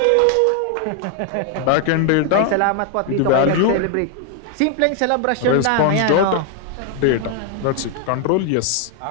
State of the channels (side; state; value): both; different; correlation 0.00